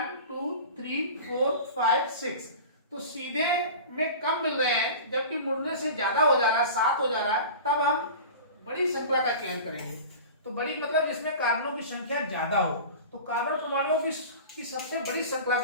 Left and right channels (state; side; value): inverted; both; correlation -0.35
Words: 2 3 4 5 6। तो सीधे में कम मिल रहे हैं जबकि मुड़ने से ज्यादा हो जा रहा है, 7 हो जा रहा है। तब हम बड़ी श्रृंखला का चयन करेंगे। तो बड़ी मतलब जिसमें कार्बनों की संख्या ज्यादा हो। तो कार्बन परमाणुओं की सबसे बड़ी श्रृंखला